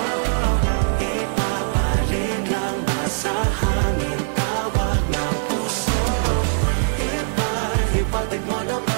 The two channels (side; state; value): left; silent; digital silence